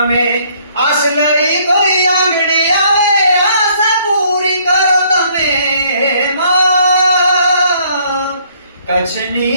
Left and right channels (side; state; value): both; inverted; correlation -0.64